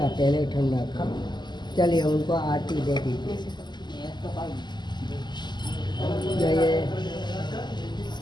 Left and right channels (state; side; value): late; right; 0.21 ms